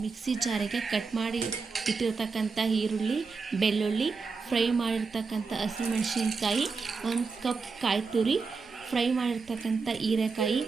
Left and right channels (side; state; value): left; quieter; 4.7 dB